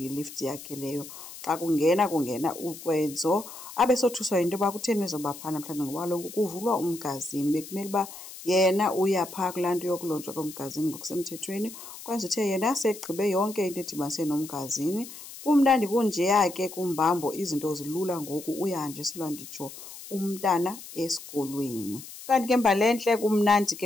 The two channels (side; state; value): left; noise; hiss, 14 dB below the sound